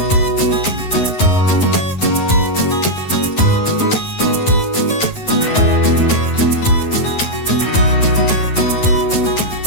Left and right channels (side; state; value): right; late; 10 ms